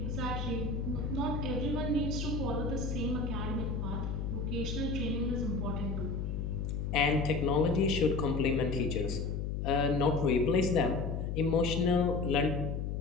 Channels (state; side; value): noise; left; hum, 2 dB below the sound